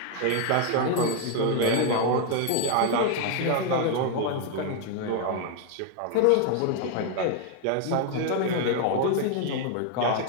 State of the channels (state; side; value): different; both; correlation 0.00